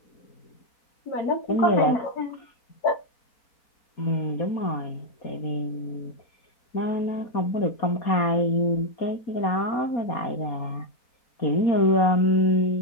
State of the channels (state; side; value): late; right; 4.2 ms